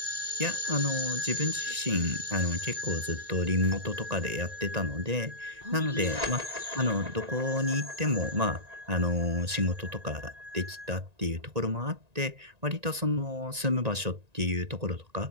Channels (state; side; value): late; left; 1.9 ms